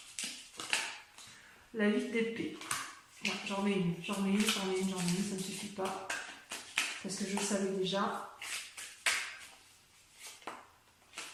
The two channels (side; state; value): both; identical; correlation 1.00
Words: la 8 d'épée. Ouais, j'en mets une, ça ne suffit pas. Parce que je le savais déjà.